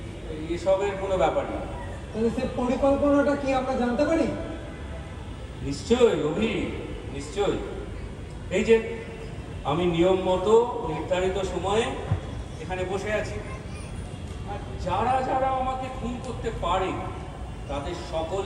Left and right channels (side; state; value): both; identical; correlation 1.00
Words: এসবের কোনো ব্যাপার নেই। তাহলে সে পরিকল্পনাটা কি আমরা জানতে পারি? নিশ্চয়ই অভি, নিশ্চয়ই। এই যে আমি নিয়ম মতো নির্ধারিত সময়ে এখানে বসে আছি, আর যারা যারা আমাকে খুন করতে পারে তাদের